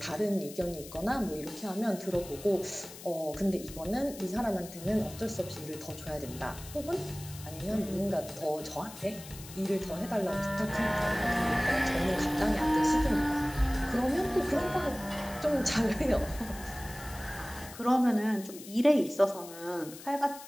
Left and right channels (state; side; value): noise; left; hiss, 15 dB below the sound